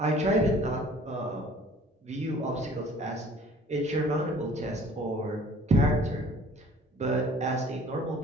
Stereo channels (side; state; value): both; normal; correlation 0.52